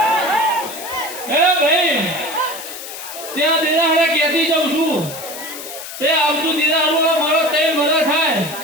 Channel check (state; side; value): noise; left; hiss, 11 dB below the sound